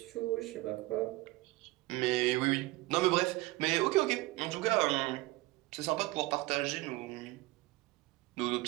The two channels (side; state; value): left; quieter; 20.2 dB